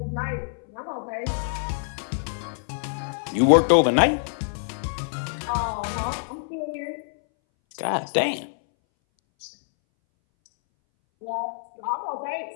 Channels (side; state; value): right; silent; 60 dB below the other